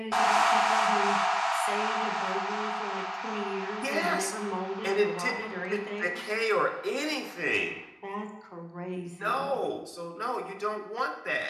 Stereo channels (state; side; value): identical; both; correlation 1.00